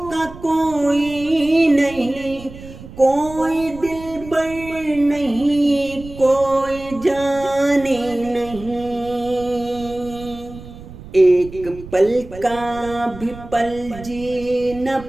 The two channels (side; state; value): right; noise; rumble, 16 dB below the sound